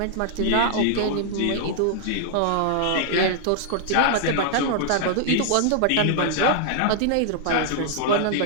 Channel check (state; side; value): different; both; correlation -0.01